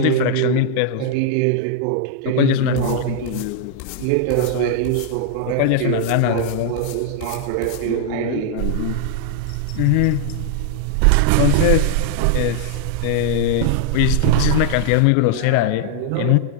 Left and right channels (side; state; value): both; different; correlation -0.01